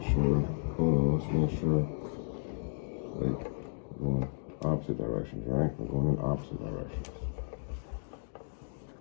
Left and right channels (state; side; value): silent; right; digital silence